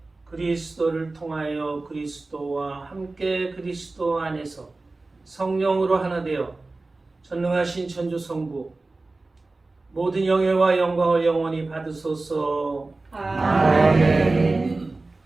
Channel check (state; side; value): quieter; left; 3.3 dB